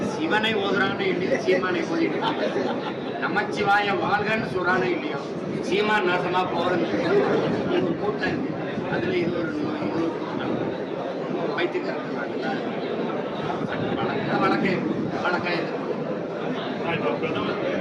சிவனை ஓதுறானே இல்லையோ சீமானை ஓதிட்டு நமச்சிவாய வாழ்கன்னு சொல்றானே இல்லையோ சீமான் நாசமா போறது கூட்டம். அதுல இது ஒரு நோய், இது ஒரு கூட்டம் வைத்துக்கிறாங்க. வழக்கம்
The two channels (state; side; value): identical; both; correlation 1.00